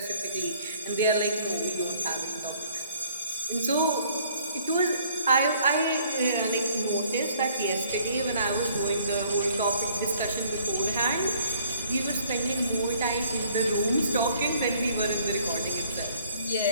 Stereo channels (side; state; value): both; inverted; correlation -0.60